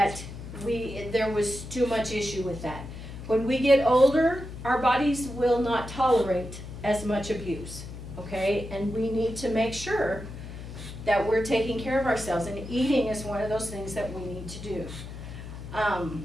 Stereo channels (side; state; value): left; noise; hum, 11 dB below the sound